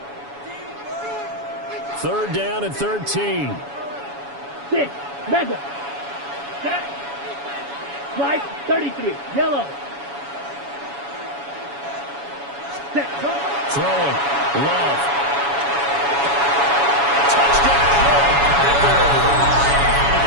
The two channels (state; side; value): late; left; 7.1 ms